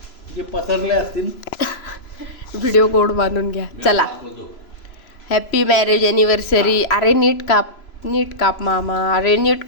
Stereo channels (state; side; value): late; right; 3.0 ms